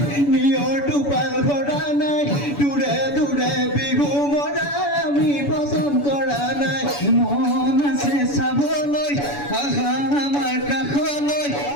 নিয়ৰ টোপাল ঘৰা নাই দূৰে দূৰে বিহু মৰা আমি পচন্দ কৰা নাই মন আছে চাবলৈ আহা আমাৰ কাষলৈ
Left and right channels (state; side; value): late; right; 7.0 ms